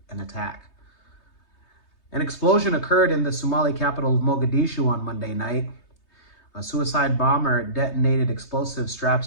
an attack. An explosion occurred in the Somali capital of Mogadishu on Monday night. A suicide bomber detonated explosive straps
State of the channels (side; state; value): right; late; 3.2 ms